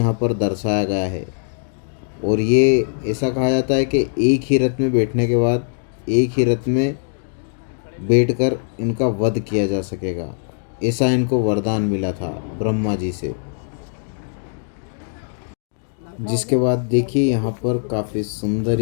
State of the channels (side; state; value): right; silent; digital silence